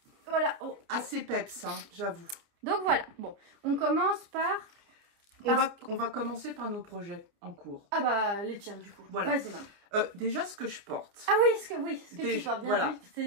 Voilà. Oh. Assez peps, hein, j'avoue. Donc voilà, bon, on commence par... On va commencer par nos projets en cours. Ah bah, les tiens du coup. Voilà. Vas-y, maman. Déjà, ce que je porte. Ah oui, ce que tu portes bien. Voilà.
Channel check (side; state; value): left; late; 29 ms